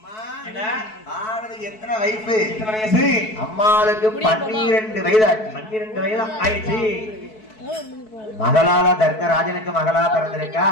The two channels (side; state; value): right; late; 4.6 ms